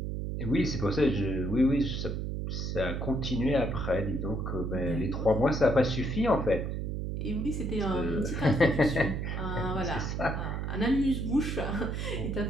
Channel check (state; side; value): noise; right; hum, 3 dB below the sound